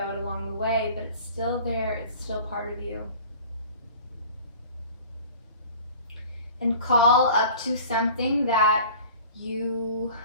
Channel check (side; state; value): both; inverted; correlation -0.44